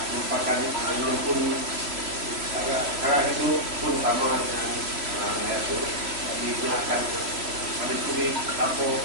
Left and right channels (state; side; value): late; left; 3.0 ms